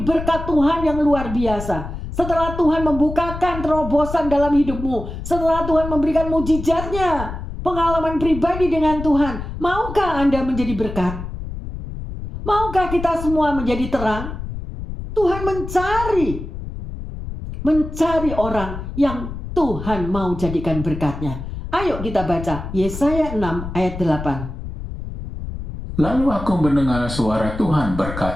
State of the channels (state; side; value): noise; left; rumble, 8 dB below the sound